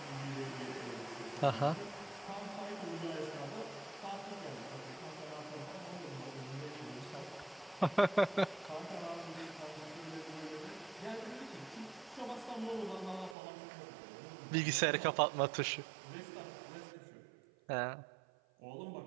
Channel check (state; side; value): drops out; left; at 13.4 s